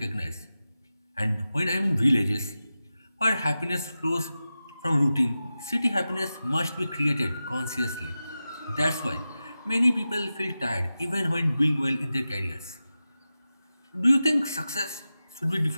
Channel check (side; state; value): both; inverted; correlation -0.93